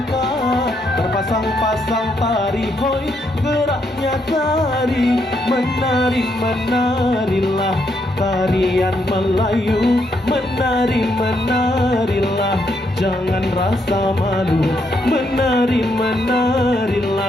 terpasang-pasang tari hoi geraknya tari. Menari menarilah tarian Melayu, menari menarilah jangan rasa malu. Menari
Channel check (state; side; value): normal; both; correlation 0.76